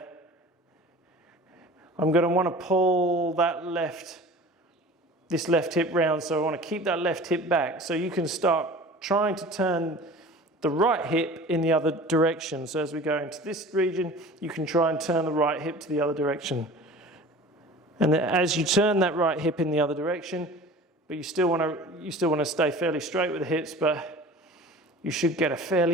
I'm going to want to pull this left hip round, so I want to keep that left hip back. So you can start trying to turn the right hip in the other direction. So as we go into this region, you can try and turn the right hip to the other direction. And then as you turn that right hip in the other direction, but you still want to stay fairly straight with the hips, but you should get a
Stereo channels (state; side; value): normal; both; correlation 0.41